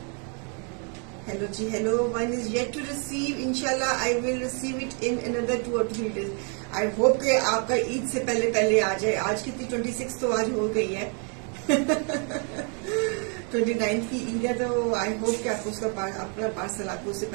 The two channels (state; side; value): quieter; left; 38.5 dB